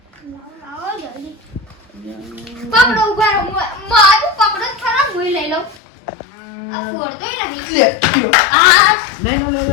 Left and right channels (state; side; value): drops out; right; at 5.8 s